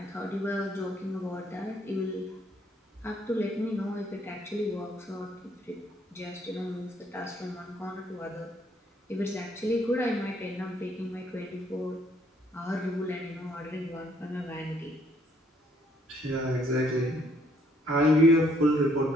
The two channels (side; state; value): both; normal; correlation 0.67